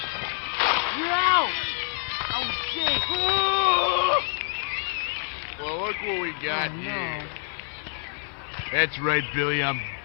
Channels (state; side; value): silent; right; digital silence